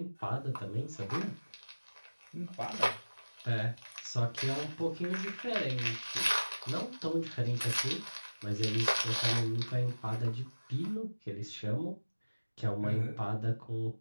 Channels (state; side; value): inverted; both; correlation -1.00